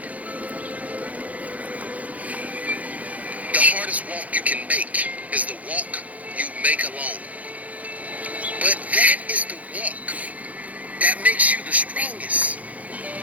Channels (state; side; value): late; left; 0.071 ms